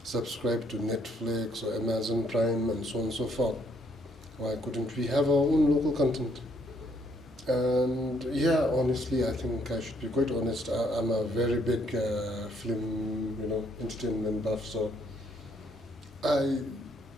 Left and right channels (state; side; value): normal; both; correlation 0.69